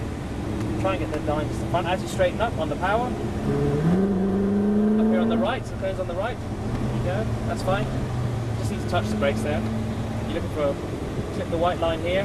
Try and get the line to the front. As you straighten up on the power. Up here on the right. So goes on the right. There you go. That's fine. Just need to touch the brakes there. You're looking for clip the white line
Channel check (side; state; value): both; identical; correlation 1.00